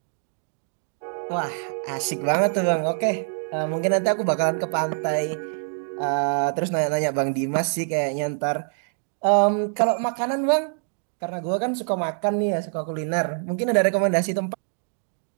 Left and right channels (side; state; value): left; silent; 62 dB below the other